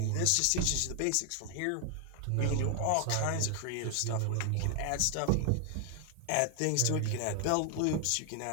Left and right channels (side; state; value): both; different; correlation 0.00